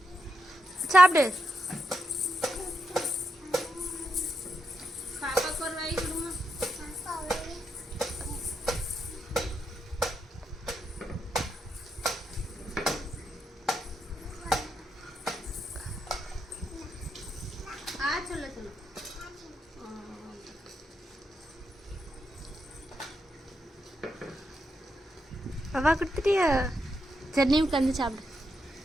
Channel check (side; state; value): both; normal; correlation 0.83